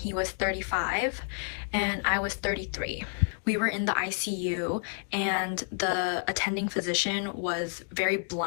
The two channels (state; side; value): silent; right; digital silence